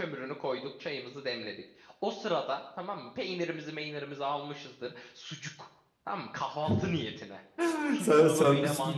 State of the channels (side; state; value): both; identical; correlation 1.00